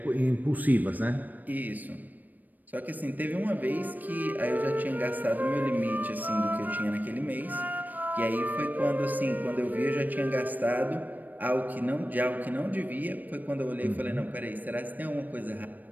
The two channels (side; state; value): left; late; 0.085 ms